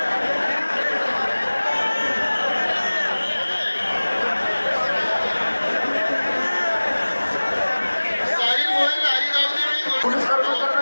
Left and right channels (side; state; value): both; inverted; correlation -1.00